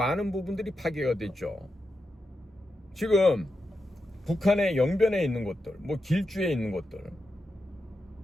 부분들이 파괴가 됐죠. 지금 북한의 영변에 있는 것들, 뭐 길주에 있는 것들,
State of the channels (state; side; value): normal; both; correlation 0.88